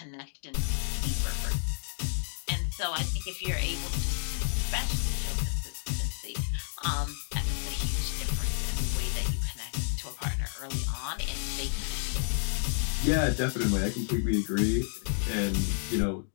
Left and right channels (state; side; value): silent; right; 57 dB below the other